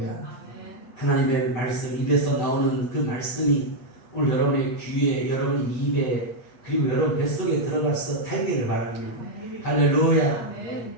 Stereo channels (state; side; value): late; right; 8.3 ms